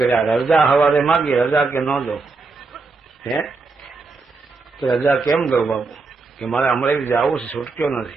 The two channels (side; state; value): left; quieter; 4.1 dB